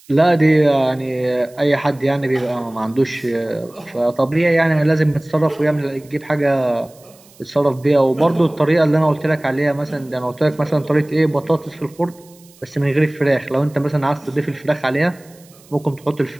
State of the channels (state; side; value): noise; right; hiss, 27 dB below the sound